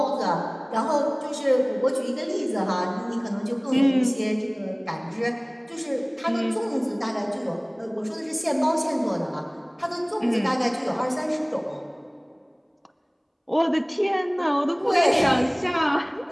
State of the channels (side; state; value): both; identical; correlation 1.00